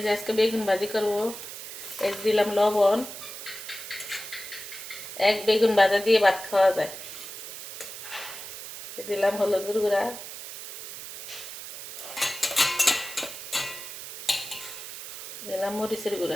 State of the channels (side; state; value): right; noise; hiss, 10 dB below the sound